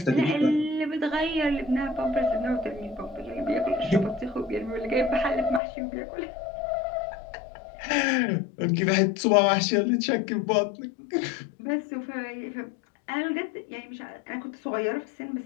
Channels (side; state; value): right; drops out; at 5.6 s